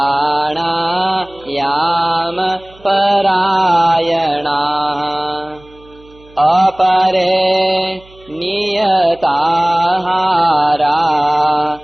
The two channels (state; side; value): noise; right; hum, 26 dB below the sound